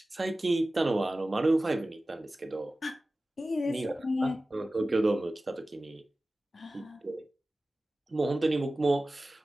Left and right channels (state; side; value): normal; both; correlation 0.96